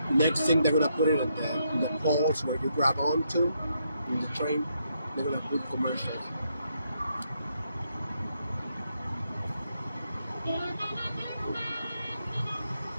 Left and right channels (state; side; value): inverted; both; correlation -0.78